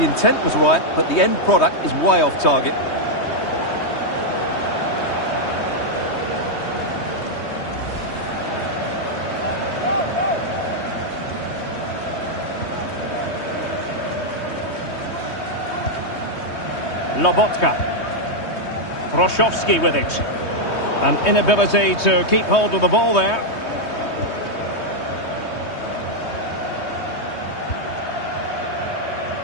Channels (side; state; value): right; late; 3.2 ms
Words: intent was right, but the end product is way off target. Lobotka. Froshovski with it. An inability to keep hold of the ball there.